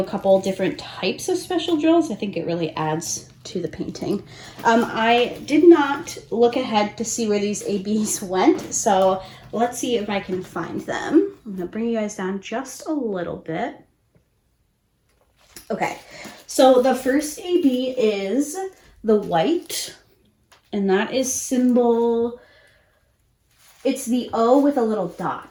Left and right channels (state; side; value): identical; both; correlation 1.00